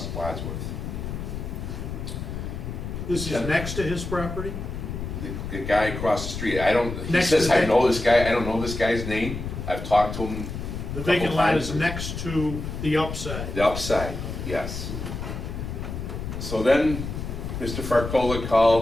Wadsworth. This is next to his property? The guy across the street, he Next to says, the- I know this guy, I don't know this guy's name. I've talked to him. The a couple vacant lot times. is next to the upside. The upside, yes. So then, Mr. Farcola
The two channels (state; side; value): noise; left; rumble, 6 dB below the sound